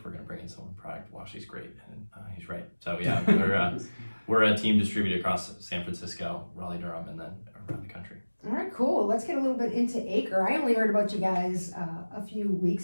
we're going to bring in someone product, Washi's great. And he's right. So yeah, we're a team distributed across San Francisco, Raleigh-Durham, and then around the country. All right, cool. Let's get a little bit into Acre. I only heard about you guys a few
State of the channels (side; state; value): both; inverted; correlation -1.00